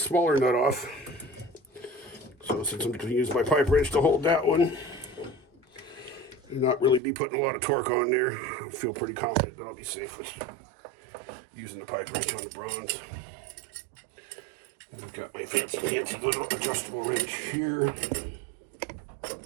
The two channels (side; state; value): left; drops out; at 7.0 s